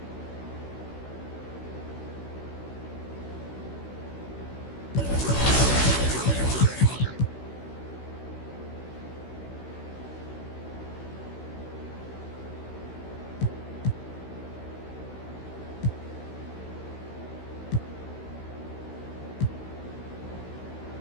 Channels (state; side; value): late; right; 16 ms